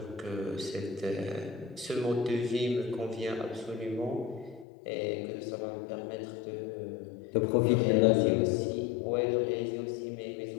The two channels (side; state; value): right; drops out; at 4.7 s